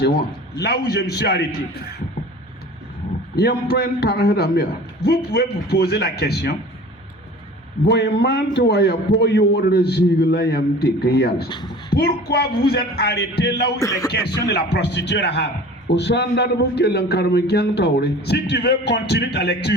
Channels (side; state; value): both; normal; correlation 0.42